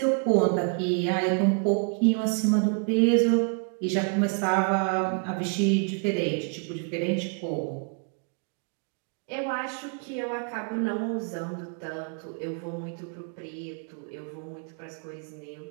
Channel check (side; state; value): left; quieter; 39.6 dB